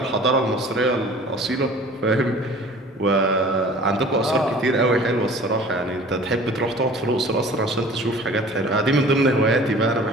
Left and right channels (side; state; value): both; normal; correlation 0.46